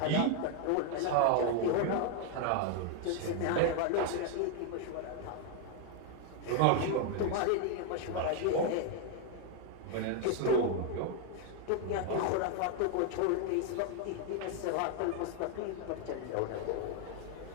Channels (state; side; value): different; both; correlation 0.00